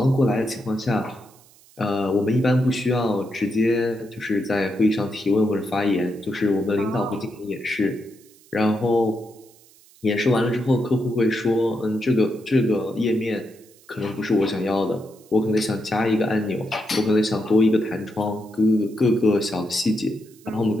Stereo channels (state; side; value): noise; right; hiss, 27 dB below the sound